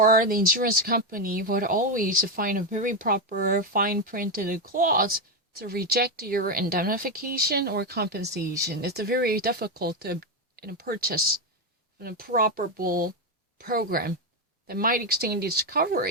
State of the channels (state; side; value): normal; both; correlation 0.08